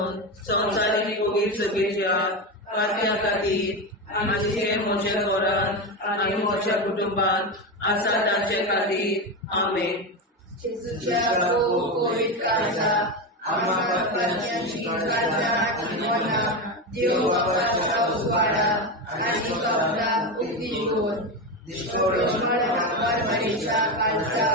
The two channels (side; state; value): both; normal; correlation 0.15